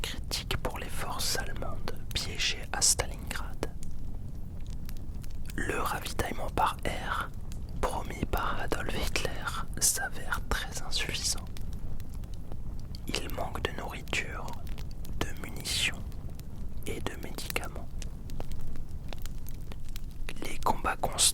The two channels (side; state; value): both; identical; correlation 1.00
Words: critique pour les forces allemandes piégées à Stalingrad. Le ravitaillement par air, promis par Adolf Hitler, s'avère très insuffisant. Il manque de nourriture, de munitions et de médicaments. Les combats